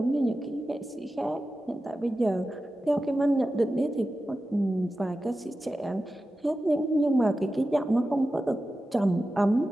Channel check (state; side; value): normal; both; correlation 0.93